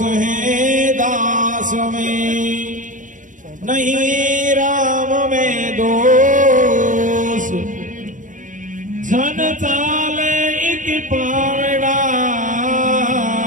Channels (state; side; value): late; left; 0.37 ms